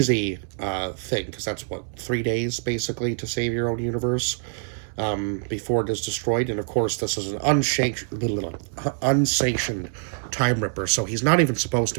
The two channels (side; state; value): left; silent; digital silence